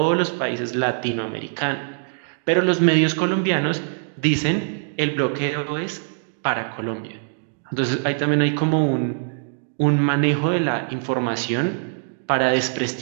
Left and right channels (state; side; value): silent; left; digital silence